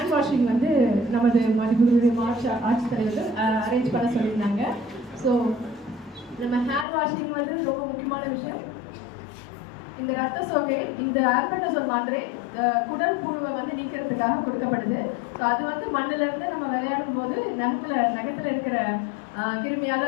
வாஷிங் வந்து நமது மதிப்புடைய ஆட்சித்தலைவர்கள் அரேஞ்ச் பண்ண சொல்லியிருந்தாங்க. ஸோ நம்ம ஹேண்ட் வாஷிங் வந்து ரொம்ப முக்கியமான விஷயம். இந்த ரத்த சோகை, இந்த ஆல்பெண்டசோல் மாத்திரை குடல் புழுவை வந்து நீக்கிறதுக்காக கொடுக்கப்படுது. ஸோ அது வந்து மண்ணிலிருந்து நம்ம விளையாடும் போது நகத்துல இருக்கிற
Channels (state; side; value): drops out; right; at 6.9 s